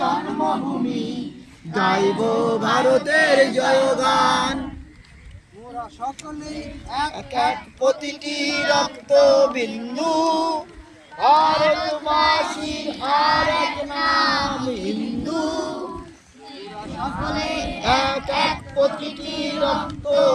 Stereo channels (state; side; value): identical; both; correlation 1.00